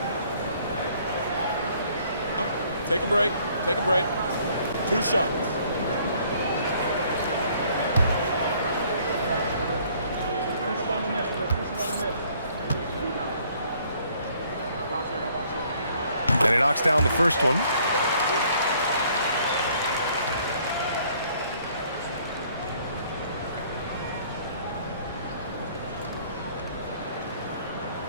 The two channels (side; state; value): both; inverted; correlation -0.61